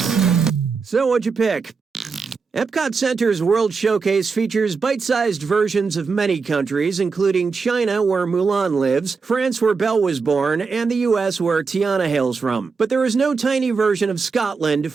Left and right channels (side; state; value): left; quieter; 4.9 dB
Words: So what'd you pick? Epcot Center's World Showcase features bite-sized versions of many countries, including China, where Mulan lives, France, where Belle was born, and the US, where Tiana hails from. But there is no tiny version of Scotland